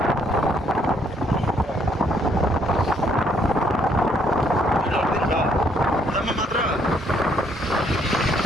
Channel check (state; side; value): normal; both; correlation 0.68